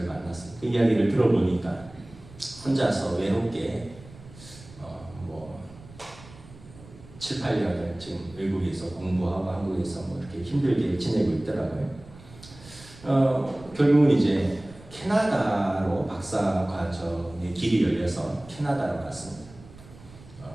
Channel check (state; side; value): noise; right; rumble, 20 dB below the sound